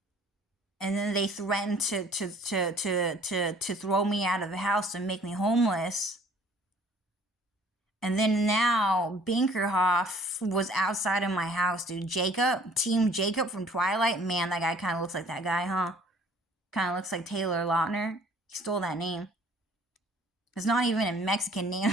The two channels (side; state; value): both; normal; correlation 0.55